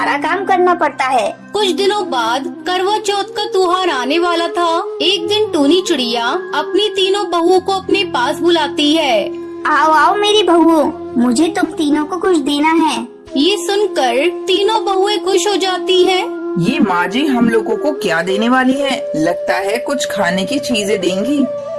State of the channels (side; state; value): both; identical; correlation 1.00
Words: काम करना पड़ता है। कुछ दिनों बाद करवा चौथ का त्योहार आने वाला था। एक दिन टूनी चिड़िया अपनी तीनों बहुओं को अपने पास बुलाती है। आओ आओ मेरी बहुओं, मुझे तुम तीनों को कुछ देना है। ये सुनकर तीनों बहुएं खुश हो जाती हैं। ये माँ जी हम लोगों को क्या देने वाली है? लगता है कुछ खाने की चीजें देंगी।